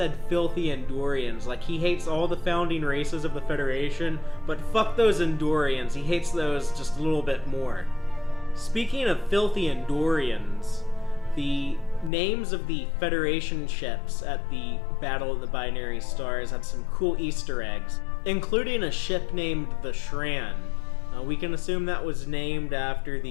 filthy Andorians, like he hates all the founding races of the Federation, but fuck those Andorians, he hates those just a little bit more. Speaking of filthy Andorians, the names of the Federation ships at the Battle of the Binary Stars had some cool Easter eggs, including a ship named the Shran. We can assume that was named after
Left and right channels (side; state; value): right; drops out; at 12.1 s